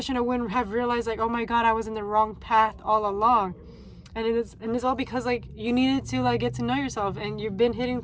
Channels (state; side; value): identical; both; correlation 1.00